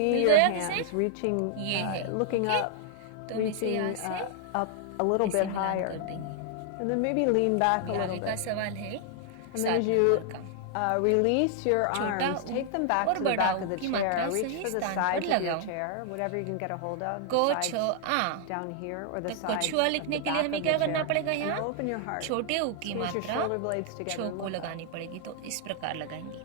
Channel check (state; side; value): different; both; correlation 0.00